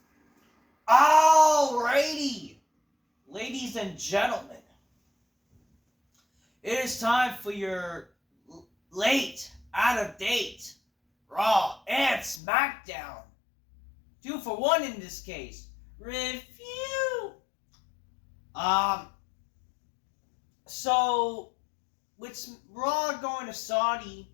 Alrighty, ladies and gentlemen, it is time for your late, out of date, Raw and Smackdown. 2 for 1 in this case. Review. Um, so with Raw going to Saudi,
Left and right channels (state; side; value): drops out; right; at 12.4 s